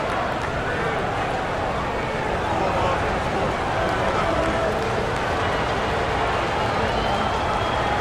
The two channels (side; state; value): both; identical; correlation 1.00